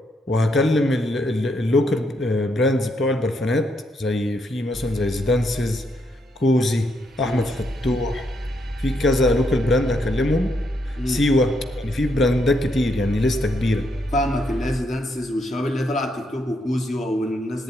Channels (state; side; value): normal; both; correlation 0.77